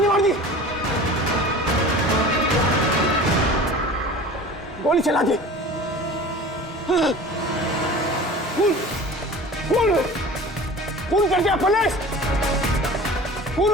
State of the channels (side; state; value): both; normal; correlation 0.39